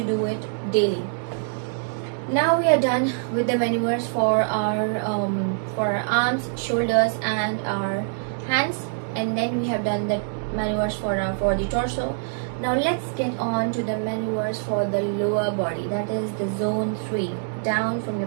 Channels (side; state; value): left; silent; digital silence